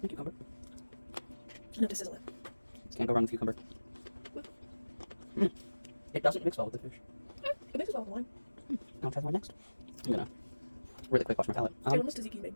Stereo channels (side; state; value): both; inverted; correlation -1.00